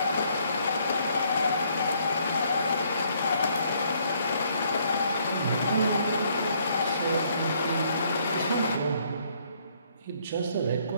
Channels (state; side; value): inverted; both; correlation -0.67